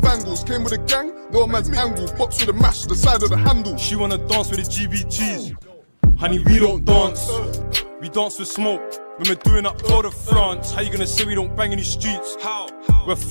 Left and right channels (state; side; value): inverted; both; correlation -1.00